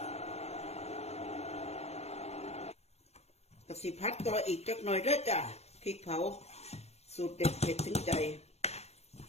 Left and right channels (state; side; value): late; right; 0.31 ms